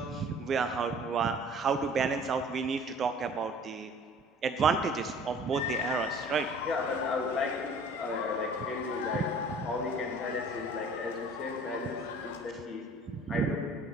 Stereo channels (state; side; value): normal; both; correlation 0.49